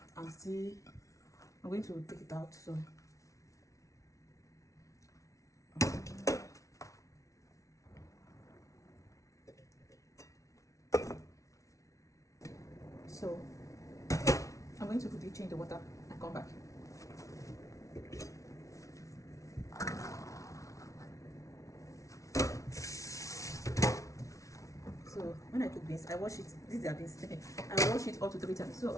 I'm going to take it out. So I'm going to quickly change the water and come back. So when I cook beans, I wash it. These are beans. I wash it up to 3 times. So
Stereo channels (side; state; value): right; late; 0.16 ms